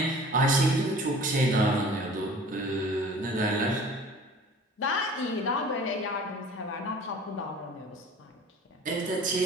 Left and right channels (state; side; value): normal; both; correlation 0.45